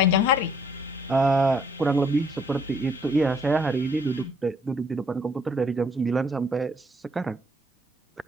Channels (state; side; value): normal; both; correlation 0.64